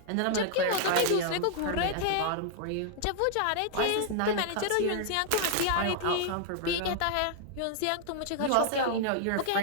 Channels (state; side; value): different; both; correlation -0.01